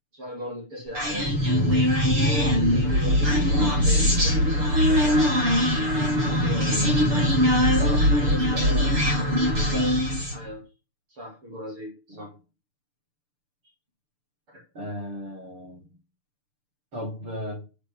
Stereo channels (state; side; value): late; left; 6.8 ms